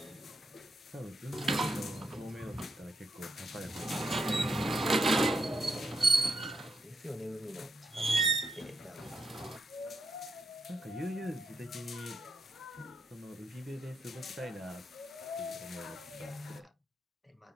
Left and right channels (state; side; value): normal; both; correlation 0.83